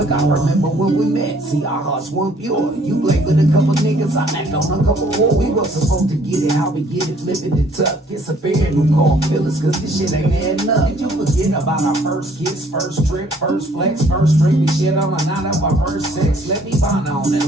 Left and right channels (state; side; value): normal; both; correlation 0.60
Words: I remember when we met, see our hearts weren't pure. You played with a couple niggas, I knocked on a couple more. We were supposed to get it, how we get it, flipping it tough. It's a pair who call feelings, cause this shit ain't adding up. Did you forget about our first kiss, first trip, first flex, first drink? We shit on a night of our first sex. Let me find on and